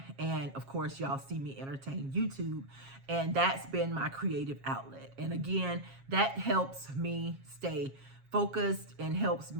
and of course y'all see me entertain YouTube, and that's been my creative outlet. And again, that helps me stay focused and helps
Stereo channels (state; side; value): late; left; 7.4 ms